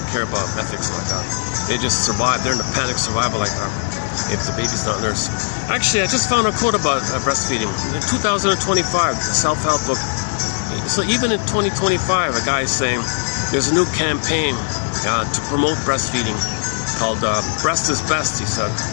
care about ethics like that. They just survive. They're in a panic survival like that if the baby's not nursed. Actually, I just found a quote about breastfeeding. In 2025, a self-help book. So even in 2025, a guy is saying there's a new campaign to promote breastfeeding called Breast is Best, he said.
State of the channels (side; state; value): right; silent; 66 dB below the other